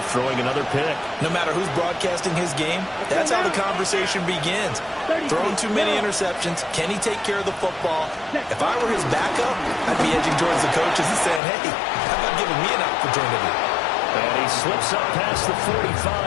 throwing another pick. No matter who's broadcasting his game, that's how the conversation begins. Throwing too many interceptions. Can he take care of the football? If I were his backup, I'd be edging towards the coaches and saying, hey, how about giving me an opportunity? And he slips up past the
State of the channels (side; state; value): right; drops out; at 11.4 s